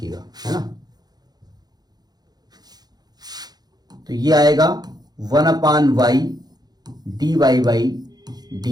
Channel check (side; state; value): left; late; 0.19 ms